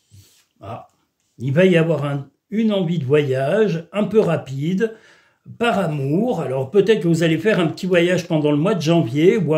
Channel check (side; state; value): both; identical; correlation 1.00